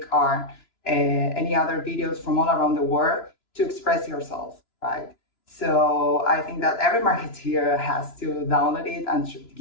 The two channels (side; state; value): right; late; 3.0 ms